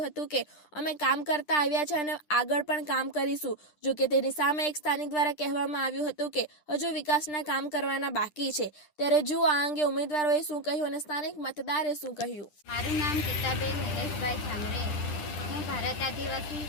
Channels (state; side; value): late; right; 10 ms